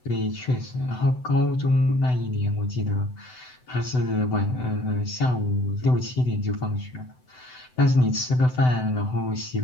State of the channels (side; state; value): right; late; 7.9 ms